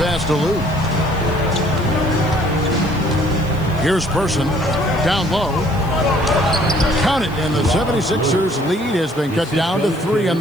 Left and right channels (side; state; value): left; noise; hiss, 24 dB below the sound